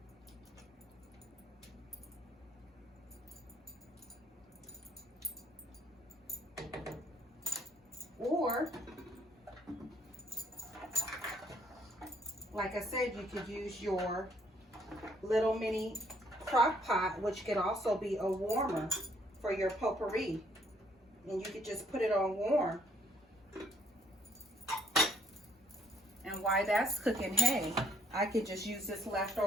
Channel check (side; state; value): both; normal; correlation 0.64